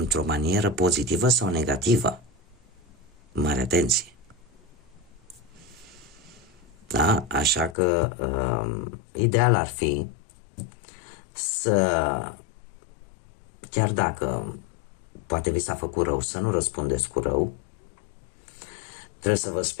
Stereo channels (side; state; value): right; drops out; at 7.8 s